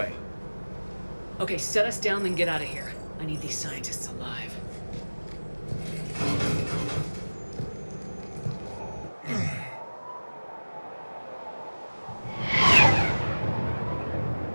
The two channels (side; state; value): both; inverted; correlation -1.00